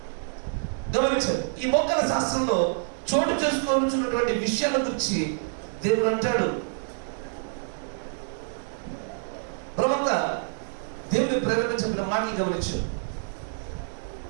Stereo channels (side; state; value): left; silent; 59 dB below the other